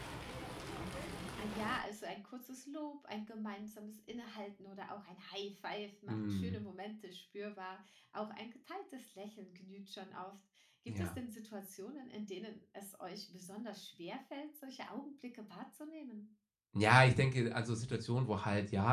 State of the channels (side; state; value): both; identical; correlation 1.00